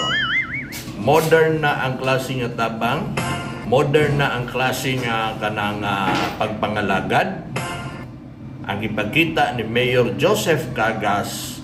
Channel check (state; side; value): identical; both; correlation 1.00